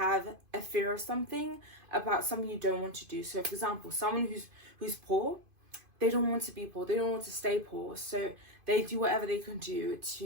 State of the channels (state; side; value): late; left; 2.5 ms